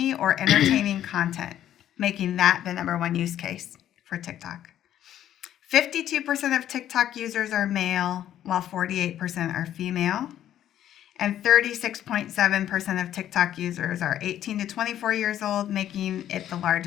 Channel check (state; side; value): quieter; right; 11.4 dB